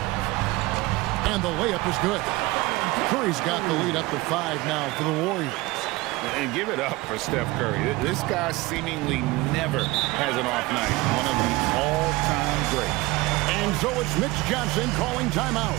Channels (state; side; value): quieter; left; 21.0 dB